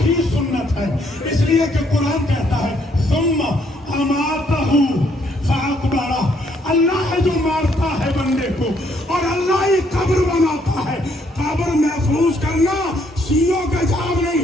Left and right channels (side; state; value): both; normal; correlation 0.70